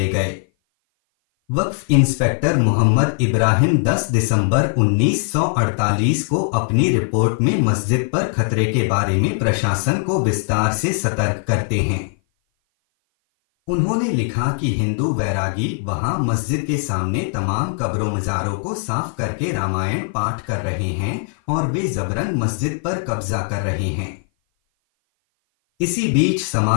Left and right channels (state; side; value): silent; right; 57 dB below the other